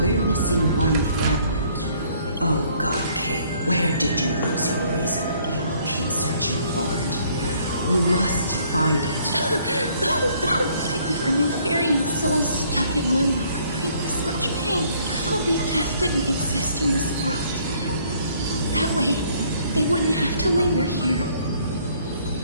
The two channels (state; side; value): inverted; both; correlation -0.62